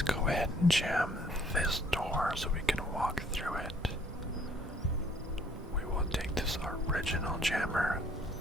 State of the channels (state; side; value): normal; both; correlation 0.61